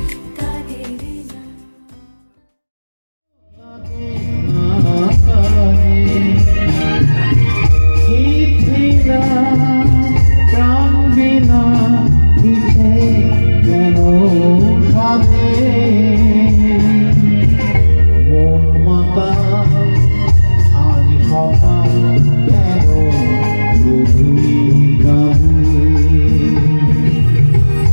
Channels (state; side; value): inverted; both; correlation -1.00